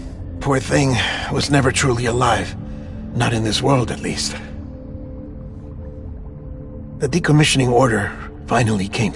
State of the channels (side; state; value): both; identical; correlation 1.00